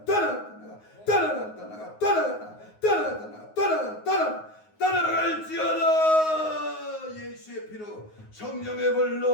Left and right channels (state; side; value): late; right; 9.5 ms